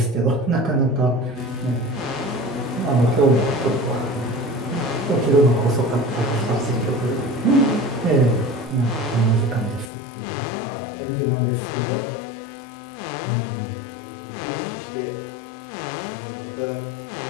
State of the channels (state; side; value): drops out; right; at 9.9 s